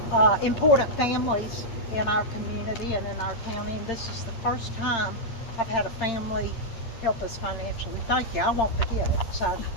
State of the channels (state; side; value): late; right; 8.8 ms